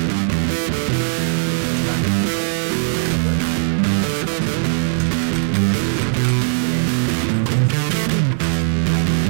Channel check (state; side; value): silent; left; digital silence